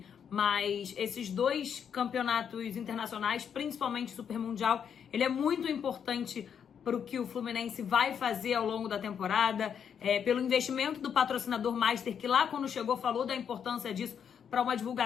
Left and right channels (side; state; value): right; quieter; 7.8 dB